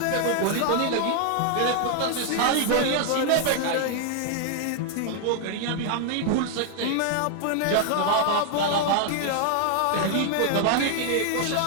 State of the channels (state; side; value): different; both; correlation 0.00